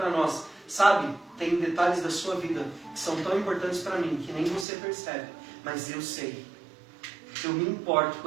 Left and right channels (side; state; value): left; drops out; at 4.7 s